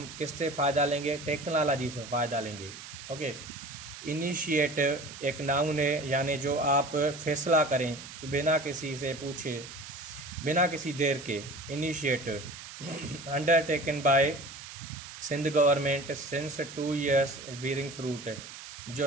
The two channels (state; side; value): noise; right; hiss, 13 dB below the sound